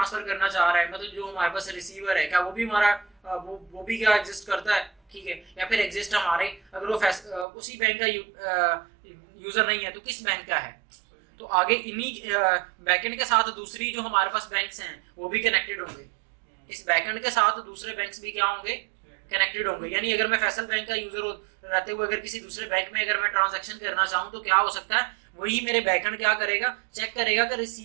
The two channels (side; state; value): left; drops out; at 7.5 s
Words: करना चाह रहा है, मतलब जो हमारे पास रिसीवर है, क्या वो भी हमारा वो भी क्या एग्जिस्ट करता है, ठीक है, या फिर एग्जिस्ट हमारे, अगर वो उसी बैंक का यूजर नहीं है तो किस बैंक का है। तो आगे इन्हीं बैकएंड के साथ दूसरी जो हमारे पास बैंक्स हैं वो भी कनेक्टेड होंगे, इस बैकएंड के साथ दूसरे बैंक्स भी क्या होंगे, कनेक्टेड होंगे। यानी अगर मैं फैसल बैंक का यूजर रहते हुए अगर किसी दूसरे बैंक में अगर मैं ट्रांजैक्शन करना चाहूँ तो क्या हो सकता है, वही मेरे बैकएंड क्या करेगा, चेक करेगा कि